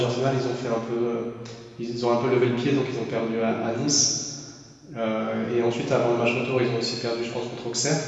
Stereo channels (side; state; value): both; identical; correlation 1.00